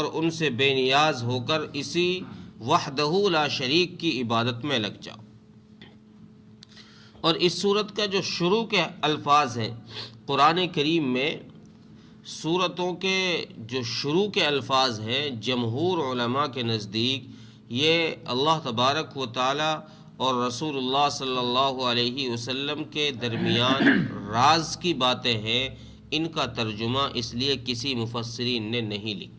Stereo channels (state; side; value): identical; both; correlation 1.00